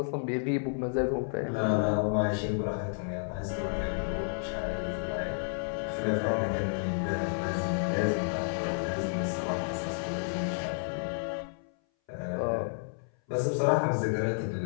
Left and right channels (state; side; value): silent; right; 57 dB below the other